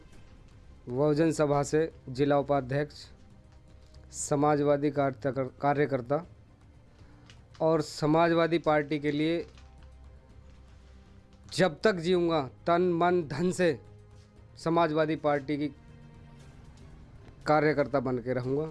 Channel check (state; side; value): identical; both; correlation 1.00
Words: बहुजन सभा से जिला उपाध्यक्ष, समाजवादी कार्यकर्ता और समाजवादी पार्टी के लिए जब तक जीऊँगा तन मन धन से समाजवादी पार्टी की कार्यकर्ता बन के रहूँगा,